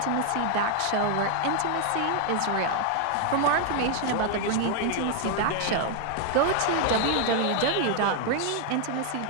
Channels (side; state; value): both; different; correlation 0.00